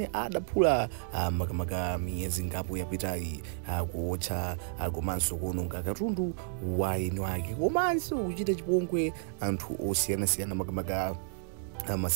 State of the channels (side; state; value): left; silent; digital silence